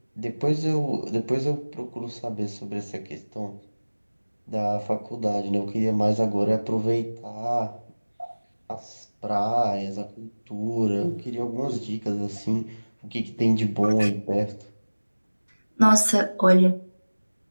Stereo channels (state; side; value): inverted; both; correlation -1.00